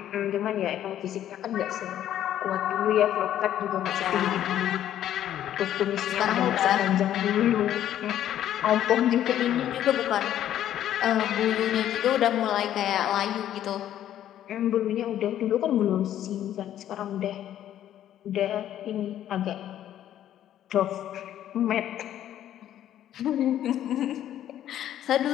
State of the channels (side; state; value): right; quieter; 11.4 dB